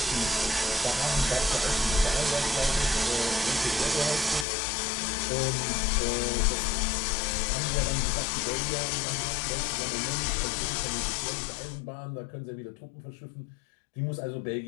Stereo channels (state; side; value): drops out; right; at 4.5 s